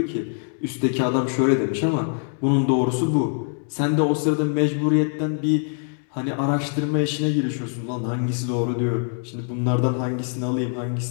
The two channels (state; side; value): silent; right; 56 dB below the other